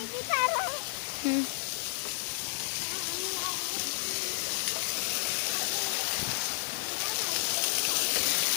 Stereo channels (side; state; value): right; silent; 57 dB below the other